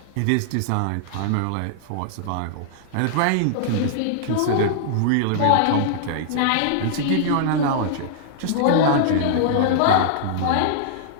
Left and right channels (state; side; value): different; both; correlation -0.01